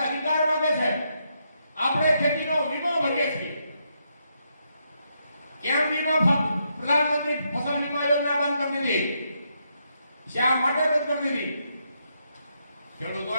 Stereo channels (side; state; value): both; inverted; correlation -0.79